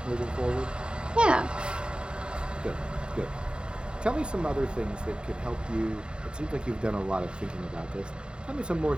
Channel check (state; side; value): late; left; 0.051 ms